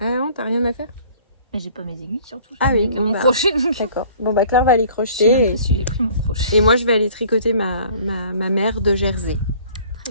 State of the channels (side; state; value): both; inverted; correlation -0.52